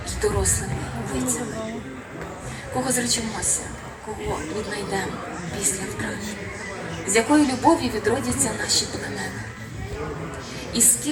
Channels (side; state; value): both; identical; correlation 1.00